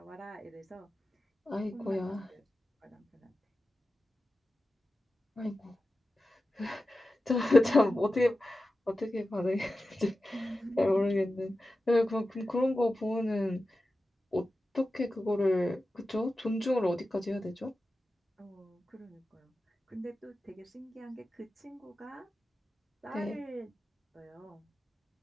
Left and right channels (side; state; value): both; normal; correlation 0.93